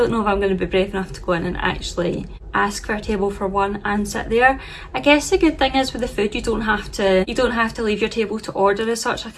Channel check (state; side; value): identical; both; correlation 1.00